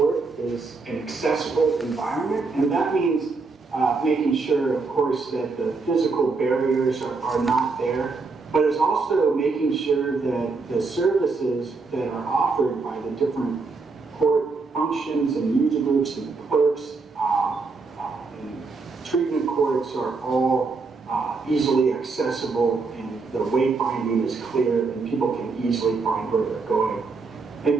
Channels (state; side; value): quieter; left; 4.2 dB